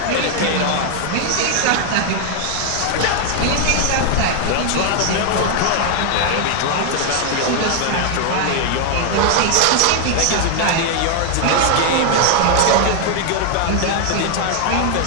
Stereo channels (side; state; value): both; different; correlation 0.00